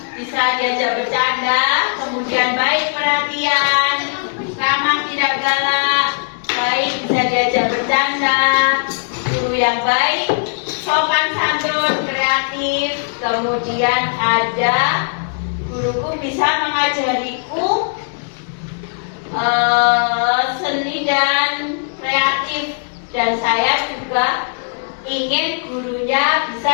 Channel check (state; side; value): silent; right; digital silence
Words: bisa diajak bercanda, kemudian baik perhatian, ramah tidak galak, baik bisa diajak bercanda, guru yang baik, sopan santun, kreatif, kemudian ada guruku bisa mengajariku seni dan kreatif, dan saya juga ingin gurunya bisa